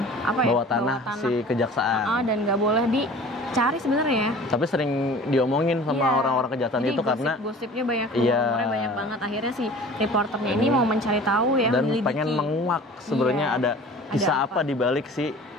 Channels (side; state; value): both; normal; correlation 0.43